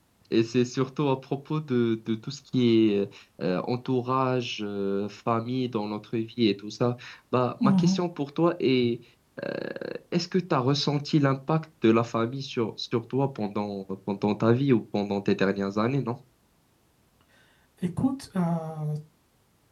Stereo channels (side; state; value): both; identical; correlation 1.00